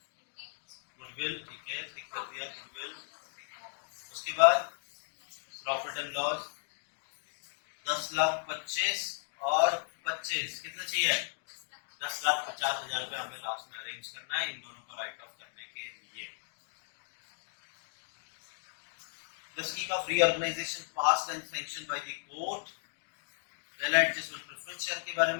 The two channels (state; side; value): silent; right; digital silence